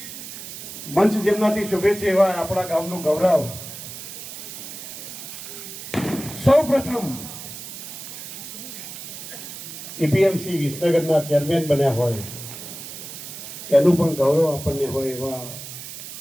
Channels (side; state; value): right; noise; hiss, 11 dB below the sound